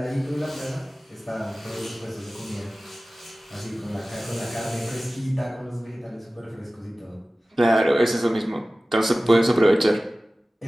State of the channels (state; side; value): normal; both; correlation 0.97